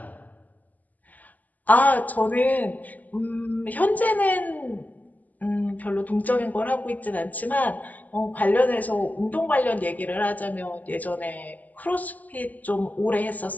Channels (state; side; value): late; right; 0.080 ms